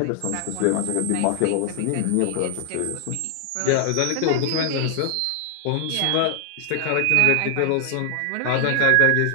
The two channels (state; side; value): different; both; correlation 0.00